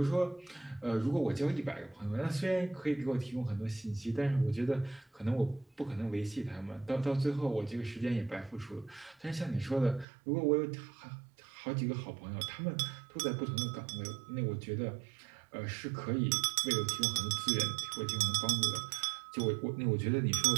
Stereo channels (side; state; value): left; drops out; at 10.1 s